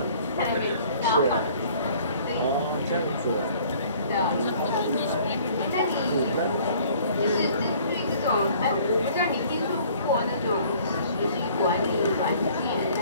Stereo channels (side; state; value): both; inverted; correlation -0.55